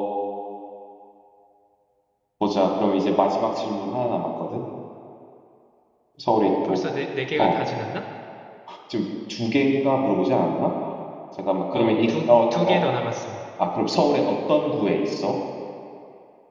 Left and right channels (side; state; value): both; identical; correlation 1.00